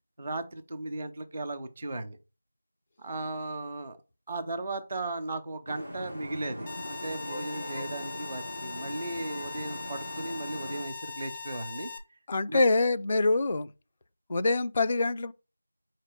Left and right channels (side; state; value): both; inverted; correlation -0.85